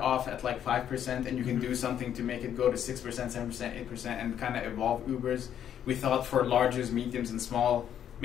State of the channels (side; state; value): right; quieter; 9.7 dB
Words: at like 5% and you can do something to make it go to 6%, 7%, 8% and kind of evolve Ubers. We thought for larges, mediums, and small,